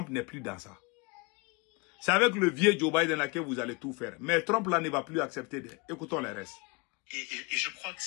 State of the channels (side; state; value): right; quieter; 27.9 dB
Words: n'est plus dans ça. C'est avec le vieux Joe Biden là que vous allez tout faire. Mais Trump là ne va plus accepter. Écoutons les restes. Et je crois que